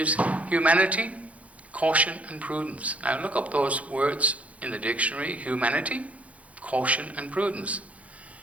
humanity, caution, and prudence. Now look up those words in the dictionary: humanity, caution, and prudence.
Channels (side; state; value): left; late; 0.066 ms